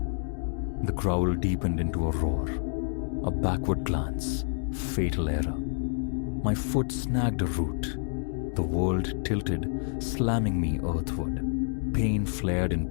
The growl deepened into a roar. A backward glance, fatal error. My foot snagged a root. The world tilted, slamming me earthward. Pain flared in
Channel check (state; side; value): silent; right; digital silence